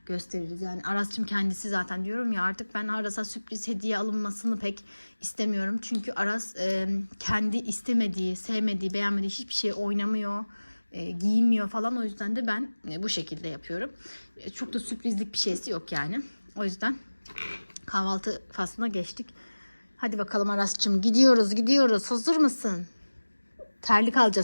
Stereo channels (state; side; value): inverted; both; correlation -1.00